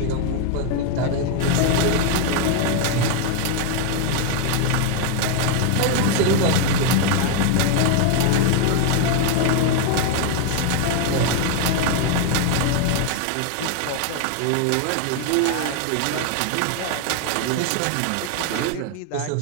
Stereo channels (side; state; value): both; different; correlation 0.01